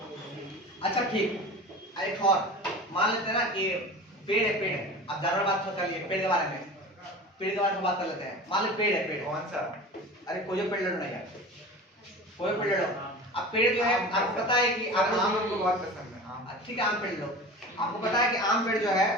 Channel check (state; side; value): normal; both; correlation 0.35